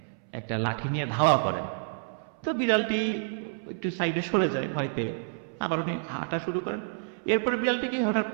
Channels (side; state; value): left; silent; 59 dB below the other